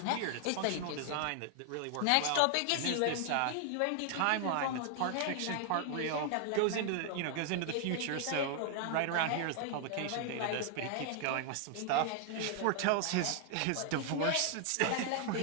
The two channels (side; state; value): both; different; correlation 0.00